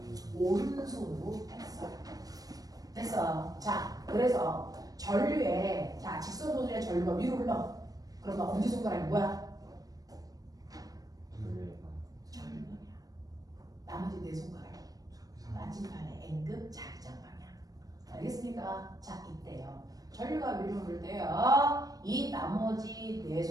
오른손으로 했어요. 됐어. 자, 그래서 전류에 직선 도선의 전류가 위로 흘러. 그러면 엄지손가락이 뭐야? 전류방향. 나머지 4손가락이 나침반의 N급 자기장 방향. 알겠습니까? 자, 이때요. 전류가 위로 흐를 때요. 이 나머지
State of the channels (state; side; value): late; left; 0.18 ms